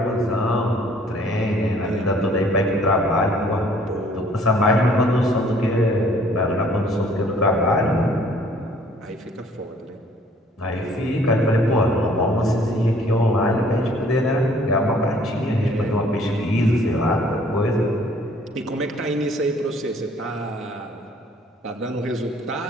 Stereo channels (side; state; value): both; normal; correlation 0.58